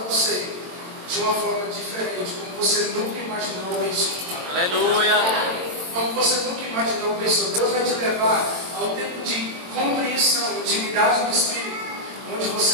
você de uma forma diferente, como você nunca imaginou ou pensou. Aleluia! Como você nunca imaginou ou pensou. Deus vai te levar a um tempo de compreensão, intimidade do Espírito, onde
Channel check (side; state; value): left; late; 22 ms